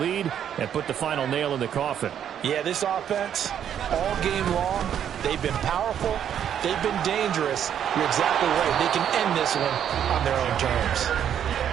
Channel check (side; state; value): left; quieter; 9.4 dB